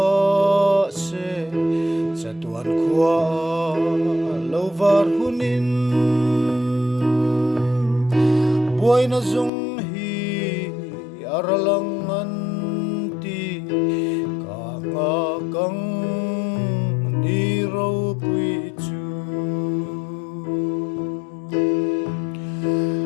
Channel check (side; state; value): right; drops out; at 9.5 s